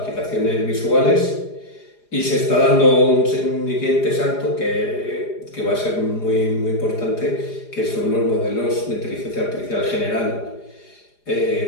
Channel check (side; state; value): right; late; 4.9 ms